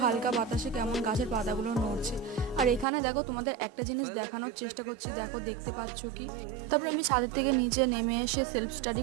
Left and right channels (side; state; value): left; drops out; at 2.9 s